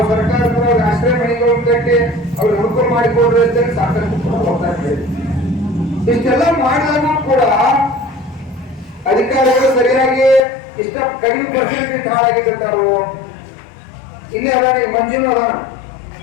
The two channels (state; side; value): drops out; right; at 10.4 s